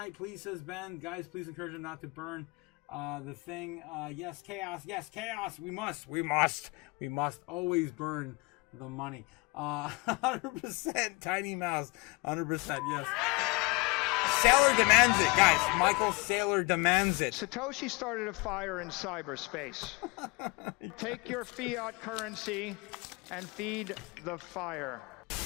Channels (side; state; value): right; quieter; 26.5 dB